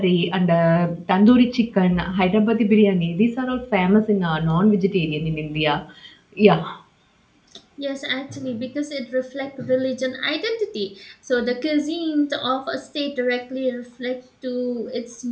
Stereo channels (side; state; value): both; identical; correlation 1.00